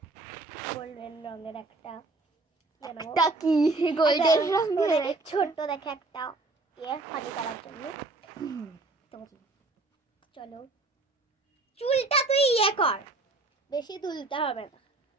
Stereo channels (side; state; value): left; quieter; 3.2 dB